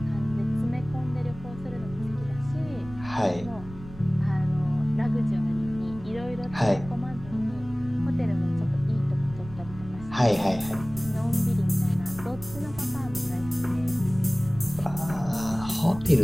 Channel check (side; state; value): right; noise; rumble, 15 dB below the sound